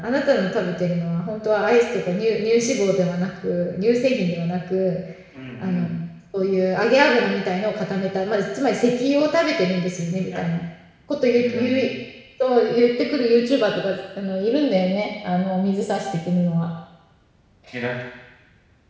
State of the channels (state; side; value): identical; both; correlation 1.00